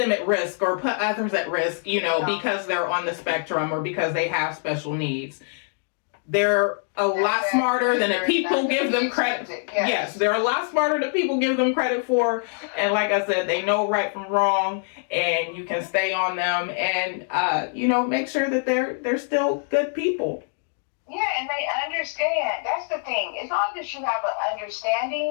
at risk or put others at risk, because they're on the spectrum or because they have special needs. They're a lot smarter than people give them credit. Yes, they're a lot smarter than people give them credit for. And like I said, they know right from wrong, and you can stay on them and, make sure that they're still good people. Yeah, and they understand. That's the thing. As long as you have an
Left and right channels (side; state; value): right; silent; 58 dB below the other